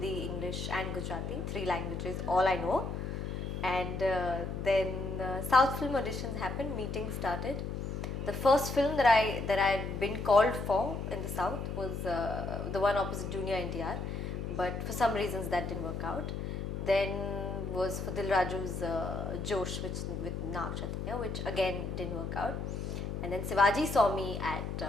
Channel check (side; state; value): left; noise; hum, 4 dB below the sound